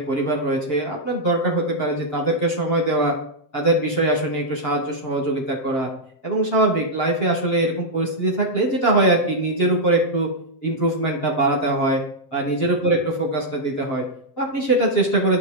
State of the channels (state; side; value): late; right; 7.6 ms